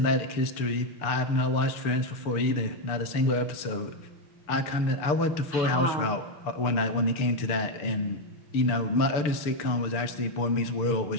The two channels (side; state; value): right; late; 6.8 ms